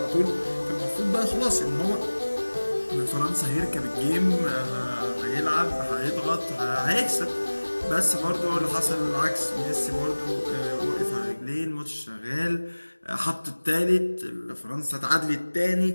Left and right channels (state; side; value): inverted; both; correlation -1.00